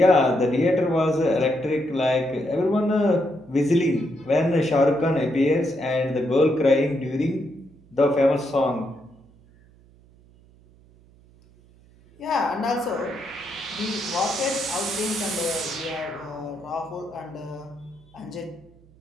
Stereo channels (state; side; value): noise; right; hum, 27 dB below the sound